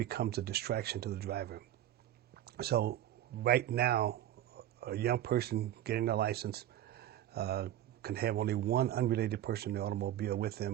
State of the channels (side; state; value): left; quieter; 12.4 dB